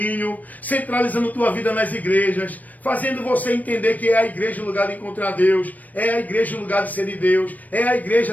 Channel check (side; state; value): right; late; 0.078 ms